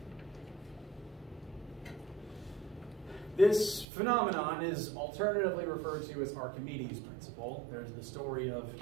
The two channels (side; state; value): left; drops out; at 3.9 s